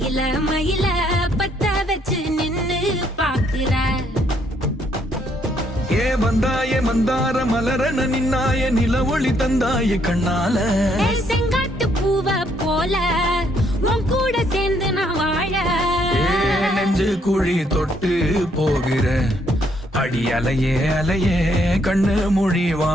மயில பத்த வச்சு நின்னு பாக்குற. ஏ வந்தாய மந்தார மலரன நின்னாய நில ஒளி தந்தாய கண்ணால. செங்காட்டு பூவ போல உன் கூட சேர்ந்து நான் வாழ. நெஞ்சு குழி தொட்டு போகிற அடி அலையே அலையே கண்ணு மொழி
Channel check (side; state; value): both; normal; correlation 0.70